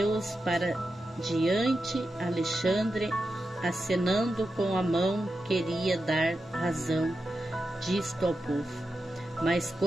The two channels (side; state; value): both; normal; correlation 0.89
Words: para diante. Alexandre, acenando com a mão, queria dar razão disto ao povo. Mas